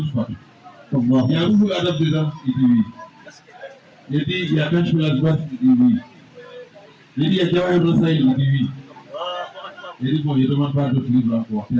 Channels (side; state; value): both; identical; correlation 1.00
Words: fois. Il y a beaucoup d'adaptes dedans, il dit oui. Il dit, il y a quand je fais la droite, il dit oui. Il dit, il y a Jawahir Rasaïl, il dit oui. Il dit, bon, il ne demande pas d'autres livres encore, il